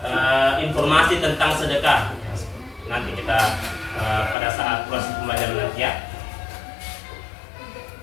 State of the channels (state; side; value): drops out; right; at 4.4 s